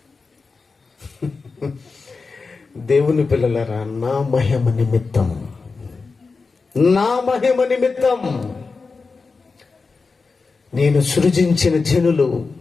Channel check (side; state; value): right; quieter; 4.4 dB